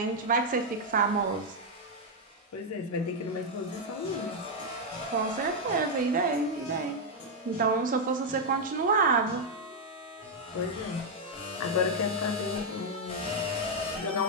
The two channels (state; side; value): normal; both; correlation 0.00